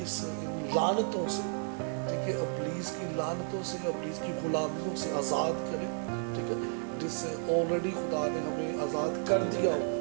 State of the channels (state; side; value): silent; left; 56 dB below the other